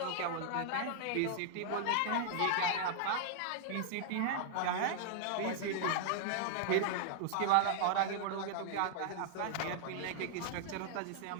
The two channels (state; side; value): different; both; correlation -0.01